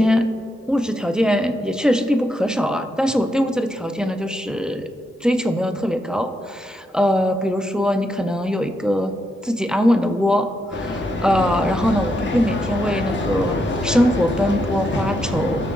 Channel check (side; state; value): both; normal; correlation 0.81